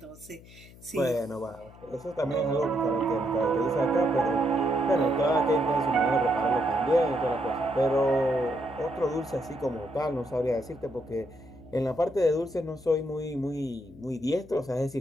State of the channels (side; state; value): left; noise; hum, 21 dB below the sound